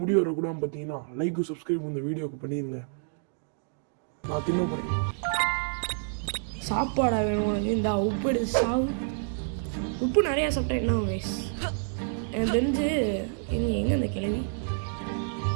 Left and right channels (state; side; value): silent; left; digital silence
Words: முடி வரக்கூடாது பார்த்தீங்கன்னா லைக் சப்ஸ்கிரைப் இந்த வீடியோக்கு பண்ணிடுங்க. நான் தின்ன போகிறேன். சாப்பாடா வேணும் உனக்கு? இந்த உப்பு எடுத்து சாவு. உப்பு நிறையா சாப்பிட்டா என்ன வயசு? எனக்கு தெரிஞ்சு எங்கே அந்த கிழவி